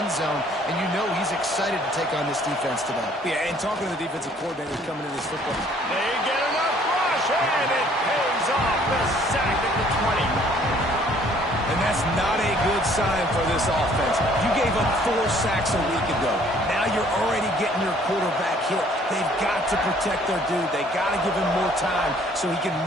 zone, and you know he's excited to take on this defense today. Yeah, and talking to the defensive coordinators coming in this football. They get enough rush, and it pays off. The sack at the 20. And that's not a good sign for this offense. You gave up 4 sacks a week ago. Now you're already getting your quarterback hit. They've got to protect their dude. They got to give him more time so he can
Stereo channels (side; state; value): both; normal; correlation 0.59